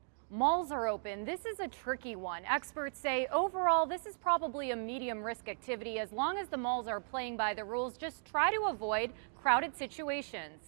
Malls are open. This is a tricky one. Experts say overall this is probably a medium risk activity. As long as the malls are playing by the rules, just try to avoid crowded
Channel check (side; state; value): left; silent; digital silence